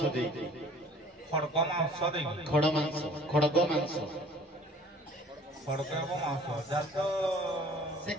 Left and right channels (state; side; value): normal; both; correlation 0.51